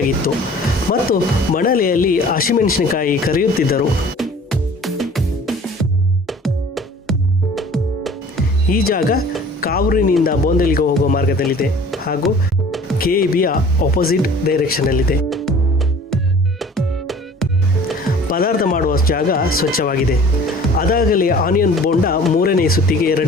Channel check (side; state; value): both; normal; correlation 0.47